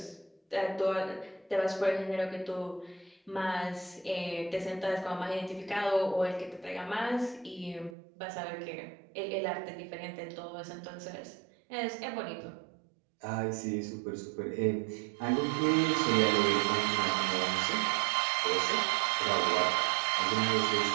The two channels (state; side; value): drops out; left; at 8.0 s